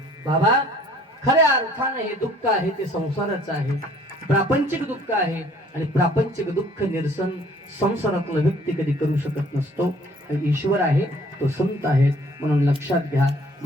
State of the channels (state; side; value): normal; both; correlation 0.57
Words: बाबा खऱ्या अर्थाने हे दुःख आहे ते संसाराचं आहे प्रापंचिक दुःख आहे आणि प्रापंचिक दुःख निरसन संसारातला व्यक्ती कधी करू शकत नसतो ईश्वर आहे तो संत आहे म्हणून लक्षात घ्या